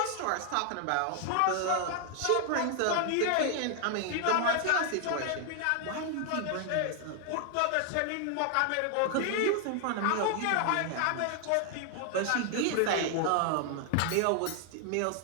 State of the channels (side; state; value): both; different; correlation 0.00